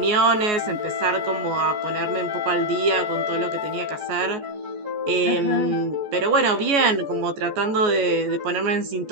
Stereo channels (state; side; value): late; left; 14 ms